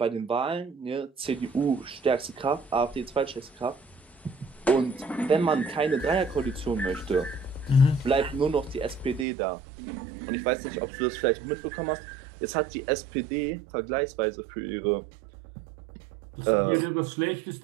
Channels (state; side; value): drops out; left; at 9.2 s